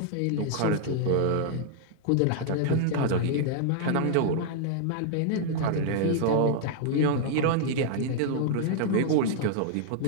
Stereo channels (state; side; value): different; both; correlation -0.01